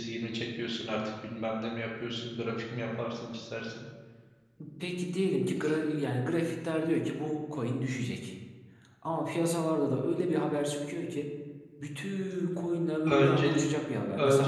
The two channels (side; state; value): both; identical; correlation 1.00